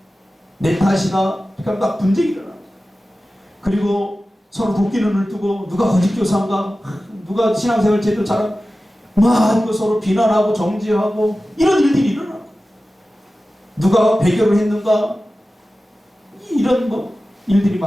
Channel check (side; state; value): both; normal; correlation 0.95